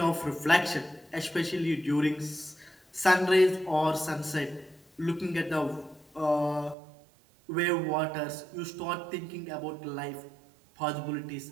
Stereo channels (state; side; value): drops out; left; at 6.8 s